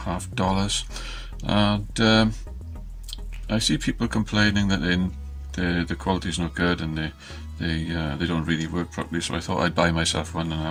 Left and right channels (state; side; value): identical; both; correlation 1.00